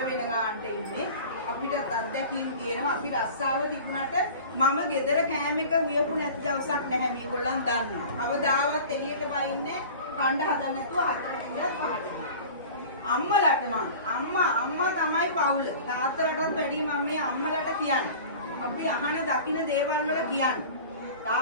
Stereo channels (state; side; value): inverted; both; correlation -0.40